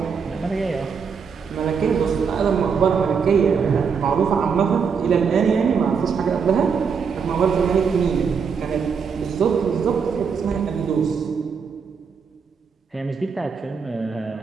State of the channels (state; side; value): quieter; left; 6.1 dB